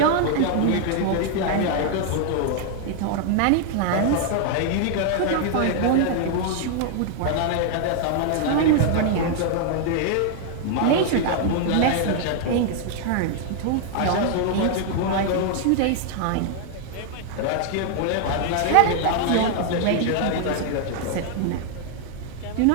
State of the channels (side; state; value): both; different; correlation 0.00